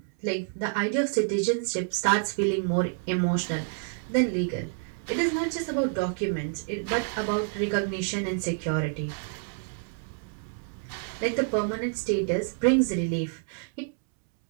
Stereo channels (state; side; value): silent; left; 59 dB below the other